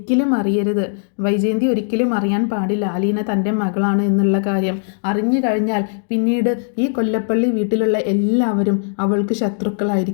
അറിയരുത്. വൈജയന്തി ഒരിക്കലും അറിയാൻ പാടില്ല അലീന തൻ്റെ മകളാണ് എന്നുള്ള കാര്യം. അറിഞ്ഞു കഴിഞ്ഞാൽ പിന്നീട് ഈ കൊല്ലപ്പള്ളി വീട്ടിലുള്ള എല്ലാവരും അവൾക്ക്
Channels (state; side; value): silent; right; digital silence